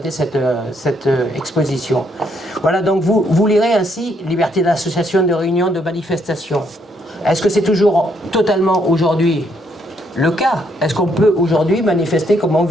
cette exposition. Voilà, donc vous lirez ainsi liberté d'association, de réunion, de manifestation. Est-ce que c'est toujours totalement aujourd'hui le cas? Est-ce qu'on peut aujourd'hui manifester comme on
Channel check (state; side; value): normal; both; correlation 0.72